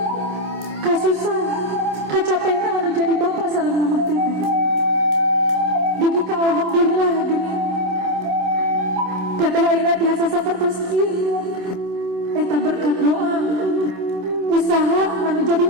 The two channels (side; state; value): left; late; 27 ms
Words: kasusahan kacapena anu jadi bapak sareng mamah teteh. Dugi ka alhamdulillah geuning teteh ayeuna biasa sapertos ieu. Eta berkat doa usaha anu jadi